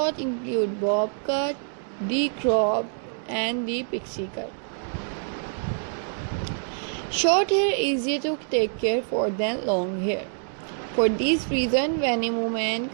include bob cut, the crop, and the pixie cut. Short hair is easier to take care for than long hair. For this reason, many women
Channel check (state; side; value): silent; left; 61 dB below the other